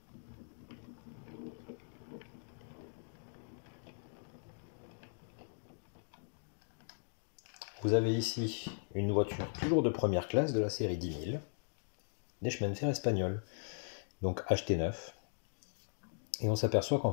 Vous avez ici une voiture toujours de première classe de la série 10 000, des chemins de fer espagnols, donc achetées neuf. Et on s'aperçoit qu'en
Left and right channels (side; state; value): right; silent; digital silence